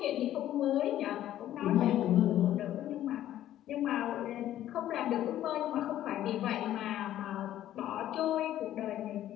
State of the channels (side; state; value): right; quieter; 12.6 dB